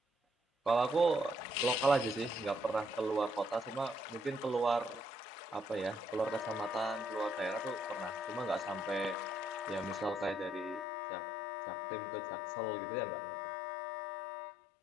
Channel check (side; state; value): right; drops out; at 10.9 s